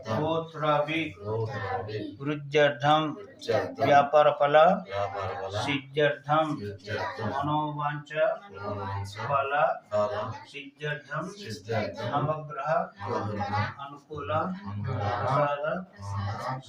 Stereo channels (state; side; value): identical; both; correlation 1.00